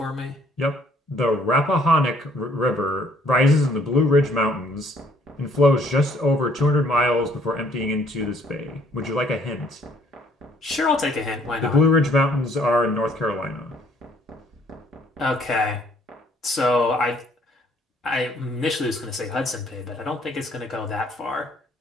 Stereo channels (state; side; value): normal; both; correlation 0.62